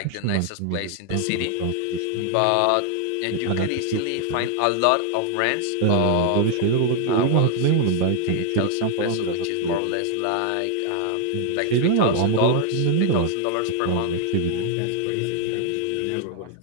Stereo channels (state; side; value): different; both; correlation 0.00